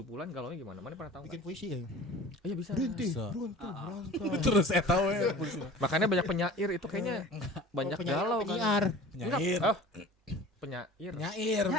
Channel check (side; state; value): both; normal; correlation 0.42